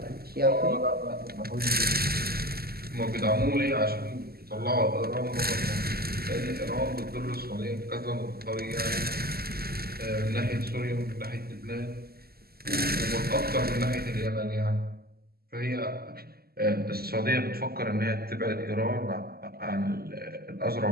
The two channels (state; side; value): late; left; 0.45 ms